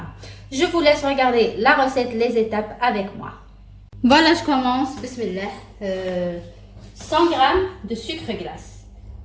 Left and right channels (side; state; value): both; identical; correlation 1.00